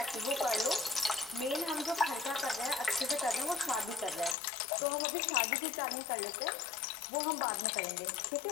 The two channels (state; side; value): drops out; right; at 4.4 s